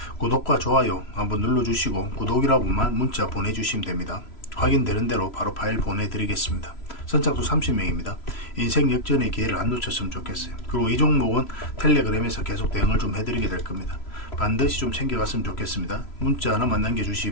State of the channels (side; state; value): right; late; 3.0 ms